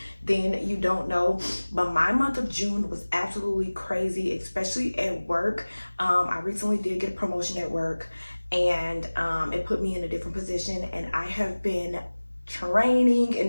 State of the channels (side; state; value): both; inverted; correlation -1.00